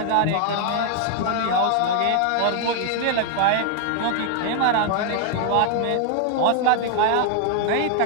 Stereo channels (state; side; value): different; both; correlation 0.00